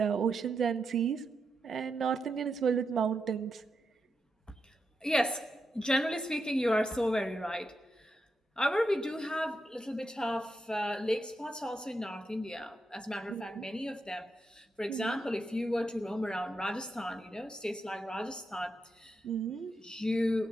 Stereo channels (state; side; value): normal; both; correlation 0.85